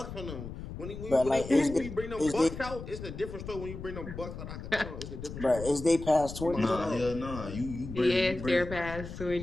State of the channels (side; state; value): left; noise; rumble, 10 dB below the sound